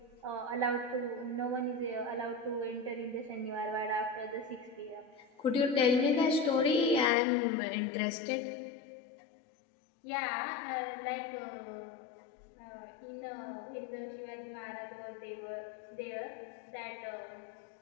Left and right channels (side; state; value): right; drops out; at 7.1 s